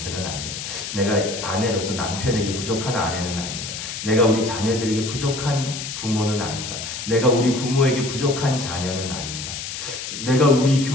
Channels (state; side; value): noise; left; hiss, 7 dB below the sound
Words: 아닌가. 내가 아내로서 남편에게 부족한 아내는 아닌가. 내가 우리 자녀들에게 부족한 부모는 아닌가. 내가 우리 부모에게 부족한 자녀는 아닌가. 내가 우리